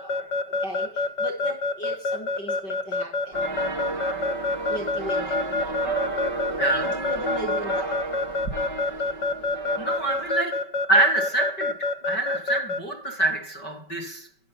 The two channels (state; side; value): late; right; 5.2 ms